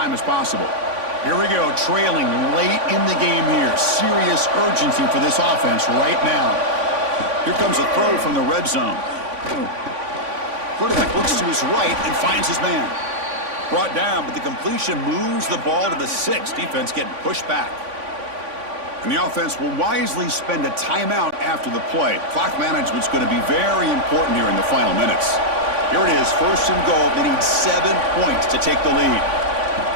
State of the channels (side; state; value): left; late; 3.5 ms